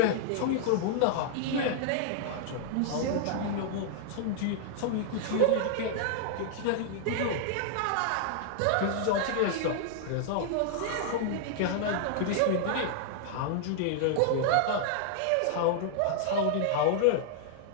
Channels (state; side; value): different; both; correlation -0.01